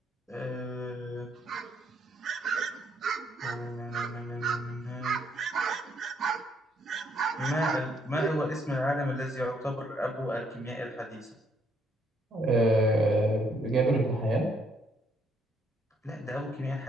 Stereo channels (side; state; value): both; normal; correlation 0.70